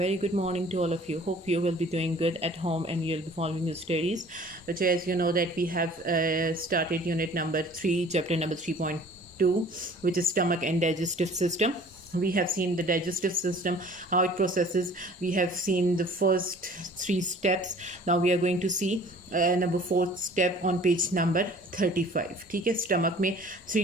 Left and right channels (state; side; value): normal; both; correlation 0.50